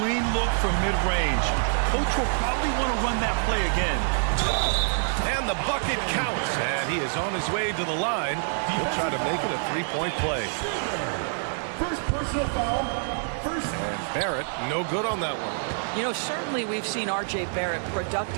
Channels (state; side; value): silent; left; 61 dB below the other